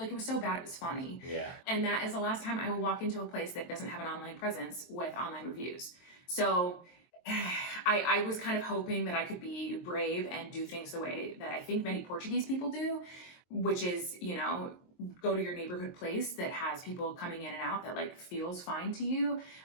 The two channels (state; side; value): late; right; 23 ms